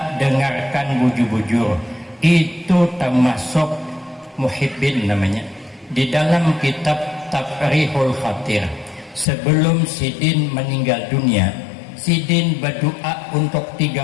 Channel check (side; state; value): right; drops out; at 9.2 s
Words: dengarkan bujur-bujur. Itu termasuk muhibbin namanya. Di dalam kitab Tafrihul Khatir, sebelum sidin meninggal dunia, sidin berdoa untuk